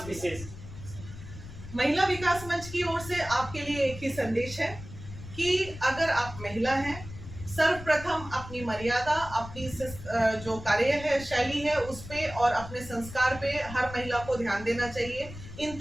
विशेष। महिला विकास मंच की ओर से आपके लिए एक ही संदेश है कि अगर आप महिला हैं, सर्वप्रथम अपनी मर्यादा, अपनी जो कार्य है, शैली है, उस पे और अपने संस्कार पे हर महिला को ध्यान देना चाहिए। इन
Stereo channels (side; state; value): left; noise; rumble, 13 dB below the sound